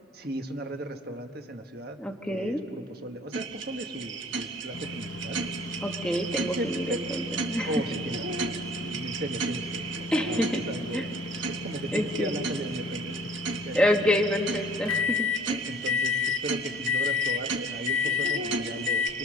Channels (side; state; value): both; normal; correlation 0.53